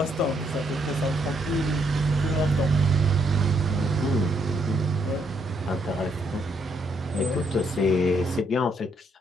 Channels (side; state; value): both; normal; correlation 0.74